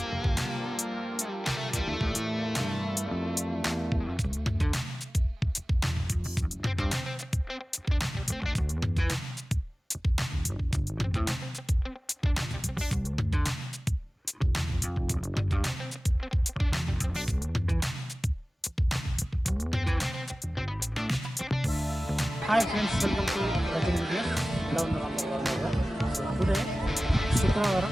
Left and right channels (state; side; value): normal; both; correlation 0.97